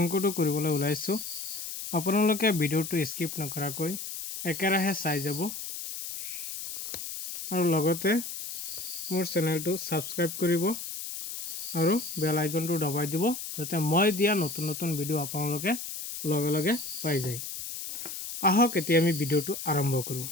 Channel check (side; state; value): left; noise; hiss, 7 dB below the sound